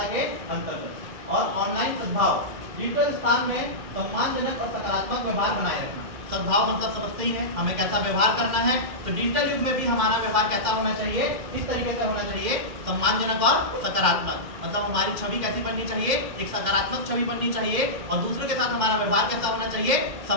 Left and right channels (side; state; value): left; late; 2.1 ms